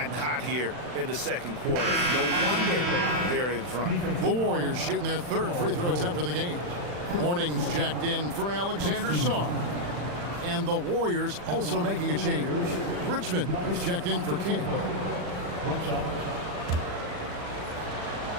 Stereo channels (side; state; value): left; late; 40 ms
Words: hot here in the second quarter. No wonder they're in front. The Warriors shooting their 3rd free throw attempt of the game. Morning's checked in for Alexander Sarr. And the Warriors also making a change. Richmond is checked in for King. One shot.